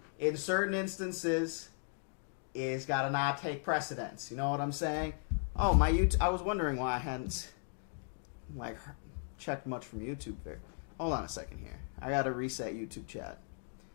in certain instances, it's gotta not take precedence. You know what I'm saying? Oh, my YouTube. I was wondering why I hadn't like checked much from YouTube there. Hold on a second here. I gotta reset YouTube chat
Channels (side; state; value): right; silent; 53 dB below the other